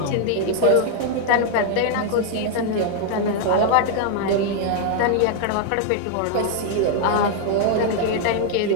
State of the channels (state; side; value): different; both; correlation 0.00